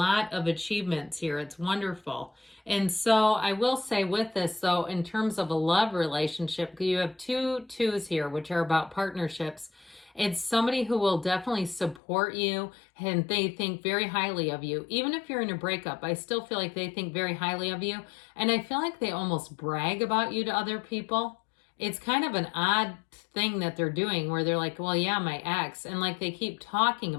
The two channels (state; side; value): drops out; right; at 12.0 s